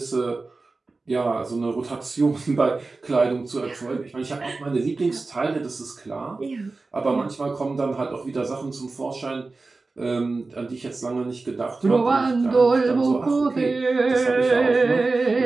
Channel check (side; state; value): left; quieter; 3.7 dB